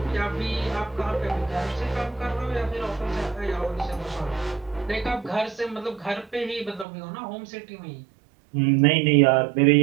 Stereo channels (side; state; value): left; drops out; at 6.9 s